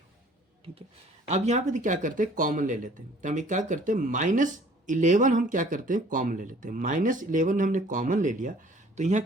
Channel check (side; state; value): both; normal; correlation 0.54